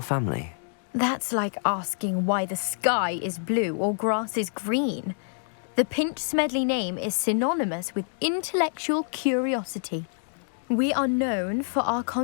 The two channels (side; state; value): right; silent; digital silence